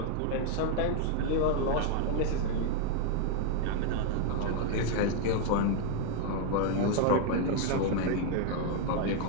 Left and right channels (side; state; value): both; different; correlation 0.00